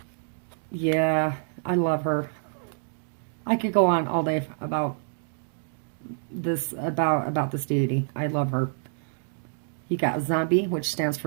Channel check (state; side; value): silent; left; digital silence